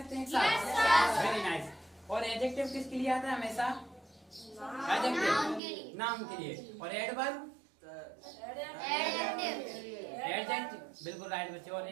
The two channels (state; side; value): drops out; left; at 5.6 s